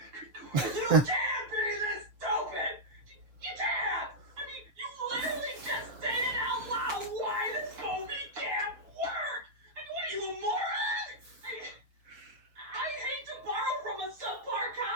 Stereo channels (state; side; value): late; left; 6.6 ms